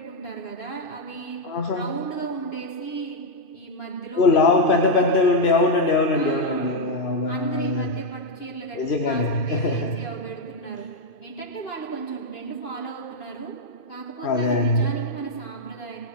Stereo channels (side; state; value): right; late; 2.5 ms